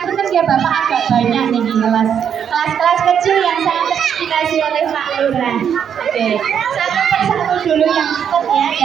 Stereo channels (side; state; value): left; quieter; 8.2 dB